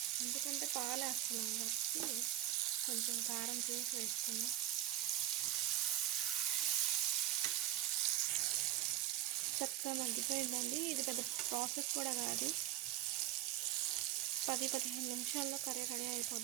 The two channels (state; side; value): quieter; left; 13.3 dB